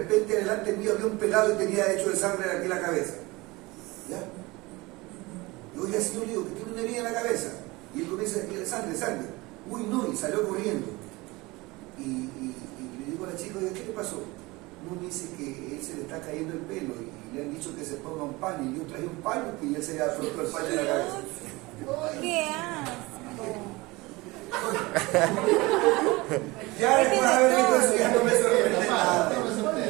delante mío había un pelado y tenía hecho de sangre aquí en la cabeza. ¿Ya? Y oye, señor, le digo, que tiene una herida en la cabeza. Y él comienza a decir: sangre. Uy, no, y salió corriendo. Y le digo a la chica: oye, ¿qué le pasó? No, dice que él se le está cayendo el pelo y le han dicho que se ponga un paño. Y yo traje un paño y él se le ha puesto el paño en la cabeza. ¿Qué asco? Ya después de haber visto eso, ya no me sorprende nada.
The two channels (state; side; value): quieter; left; 22.4 dB